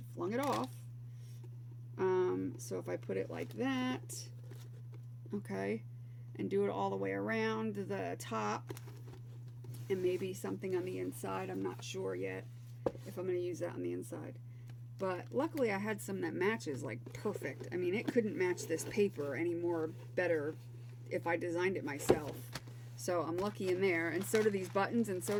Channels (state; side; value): identical; both; correlation 1.00